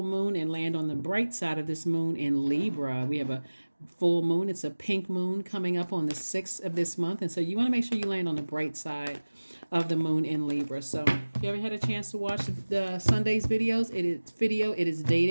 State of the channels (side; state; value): both; inverted; correlation -1.00